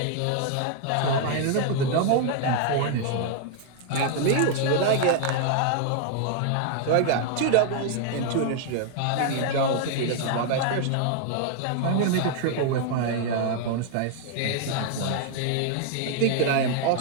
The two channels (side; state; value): both; different; correlation 0.00